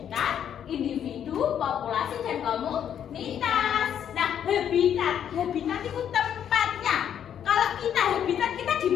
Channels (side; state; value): right; quieter; 9.3 dB